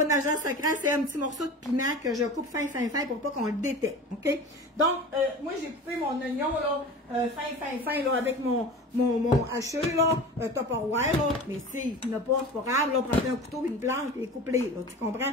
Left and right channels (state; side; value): normal; both; correlation 0.35